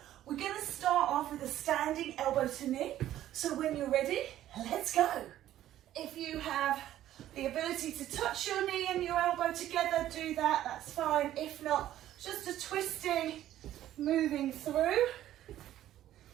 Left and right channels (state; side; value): quieter; left; 12.8 dB